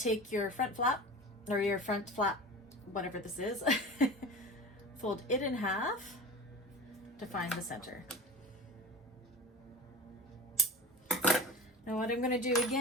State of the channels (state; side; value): normal; both; correlation 0.33